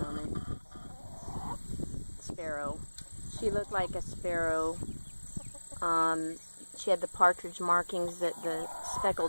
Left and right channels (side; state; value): both; inverted; correlation -1.00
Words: Sparrow. She looked like a sparrow. She had the partridge markings that the